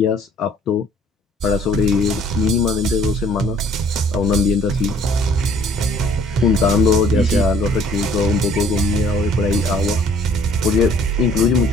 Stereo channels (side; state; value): both; normal; correlation 0.57